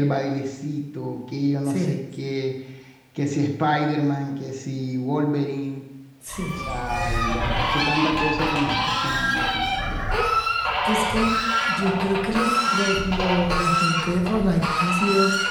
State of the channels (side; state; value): both; identical; correlation 1.00